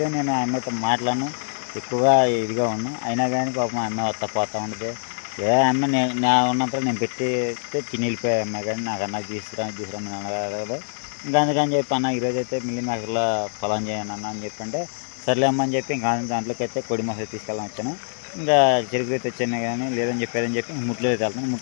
నేను ఆ అమ్మాయితో మాట్లాడను, ఎక్కువగా ఇదిగా ఉన్నాను. అయినా కానీ పాపం ఆ అమ్మాయి వస్తా పోతూ ఉండదు. ఏ అమ్మాయి నా ఉన్నంతలో నేను పెట్టితే తిని వెళ్ళిపోయా అమ్మాయి, కానీ నాకు తీసుకురమ్మని అడగదు. ఇంకా అందుకని చెప్పి అన్న ఈరోజు అయితే మిల్లి మేకర్లో పొలం చేయను అన్న అని చెప్పంటే సర్లే అమ్మ అని చెప్పి ఇంకా దాంట్లోకి అయితే కోడి మోసం తీసుకెళ్ళాలని వచ్చాను. ఇంకా చెరుకు అయితే వచ్చాను కానీ లేదని చెప్పి ముట్లూరు అయితే వెళ్తాను.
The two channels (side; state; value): right; silent; 63 dB below the other